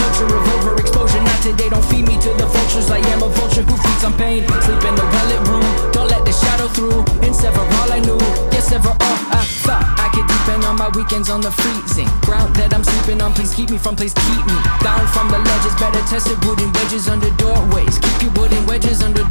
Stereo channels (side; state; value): both; inverted; correlation -1.00